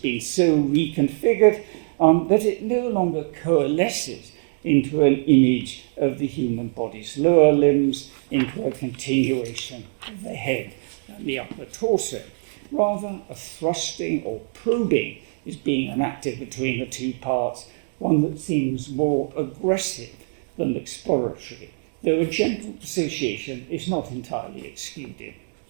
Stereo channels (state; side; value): silent; left; digital silence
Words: so reconfigured that it no longer coalesces into an image of the human body's lower limbs, into a continuation of the head and the upper torso. Rather, a thrusting or probing is being enacted between the two parts, one that seems more aggressive than exploratory, though a gentle association is not entirely excluded.